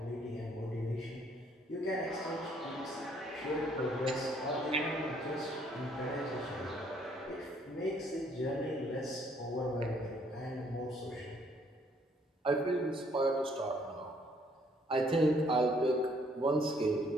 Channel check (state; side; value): normal; both; correlation 0.65